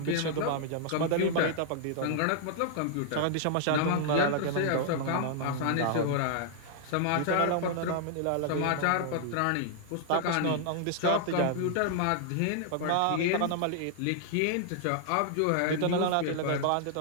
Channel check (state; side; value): different; both; correlation -0.01